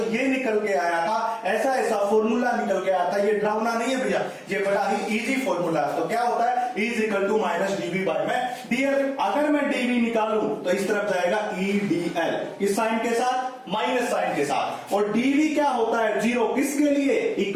ये निकल के आया था, ऐसा फॉर्मूला निकल के आया था। ये डरावना नहीं है भैया, ये बड़ा ही इजी फॉर्मूला है। तो क्या होता है, E is equal to minus dv by में dl। अगर मैं dv निकालूं तो इस तरफ जाएगा edl, इस साइन के साथ, माइनस साइन के साथ। और dv क्या होता है, जीरो। किसके लिए,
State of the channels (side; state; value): both; identical; correlation 1.00